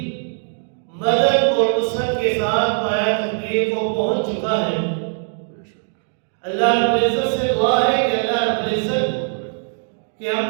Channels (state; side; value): silent; left; 65 dB below the other